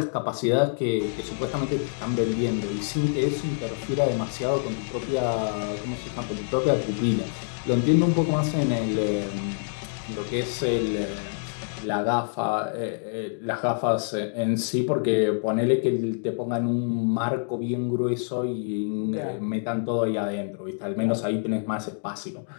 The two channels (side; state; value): right; silent; digital silence